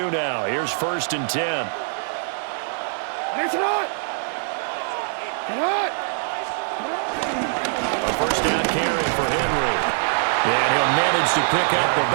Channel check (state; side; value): silent; left; digital silence